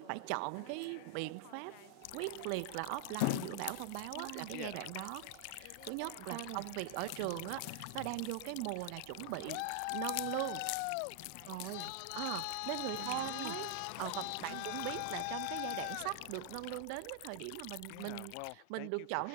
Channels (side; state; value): both; different; correlation 0.00